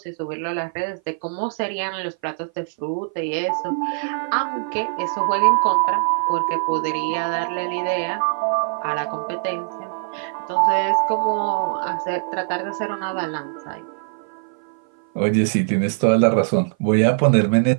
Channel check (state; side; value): silent; left; 56 dB below the other